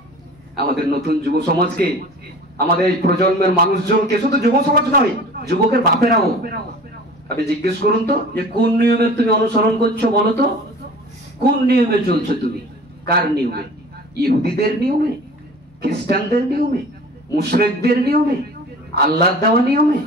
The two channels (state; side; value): normal; both; correlation 0.42